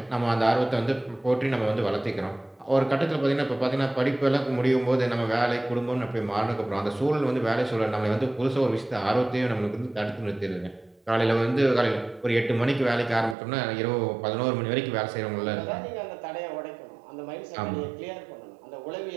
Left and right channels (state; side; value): drops out; left; at 13.4 s